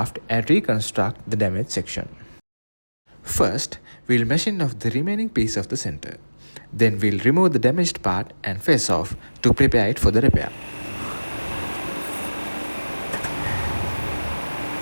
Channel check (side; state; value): both; inverted; correlation -1.00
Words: and reconstruct the damaged section. First, we'll machine off the remaining piece of the center. Then we'll remove the damaged part and face off to prepare it for the repair.